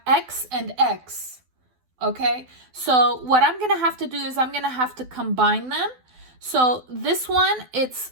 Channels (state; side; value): late; left; 12 ms